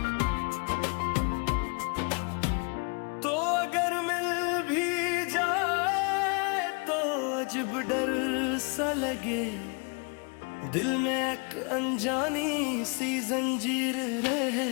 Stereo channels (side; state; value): right; quieter; 33.4 dB